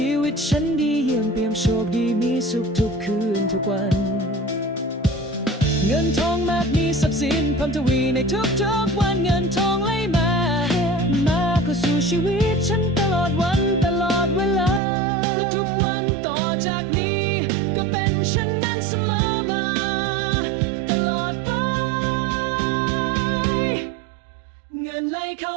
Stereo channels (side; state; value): left; drops out; at 14.8 s